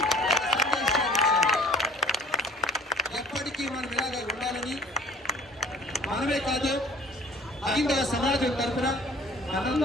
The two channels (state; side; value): normal; both; correlation 0.50